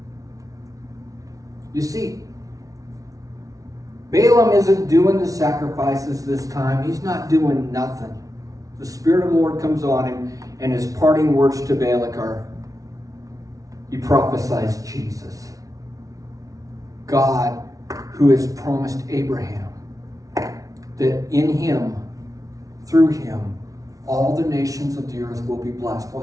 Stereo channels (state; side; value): late; left; 0.17 ms